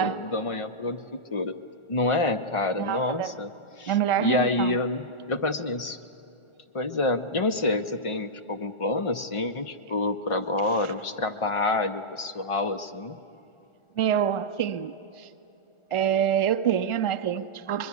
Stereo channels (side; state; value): right; late; 1.4 ms